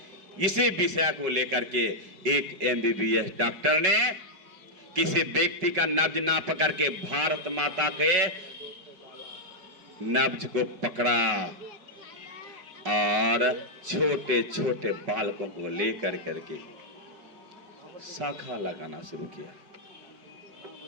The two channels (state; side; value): late; left; 5.4 ms